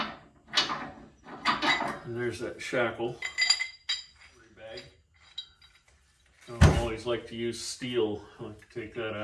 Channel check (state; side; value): identical; both; correlation 1.00